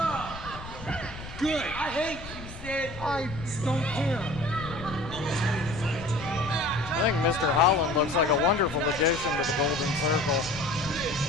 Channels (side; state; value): left; noise; rumble, 13 dB below the sound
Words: Good. I hate you, Sid. I don't care. I think Mr. Holland looks like a wonderful addition to the Golden Circle.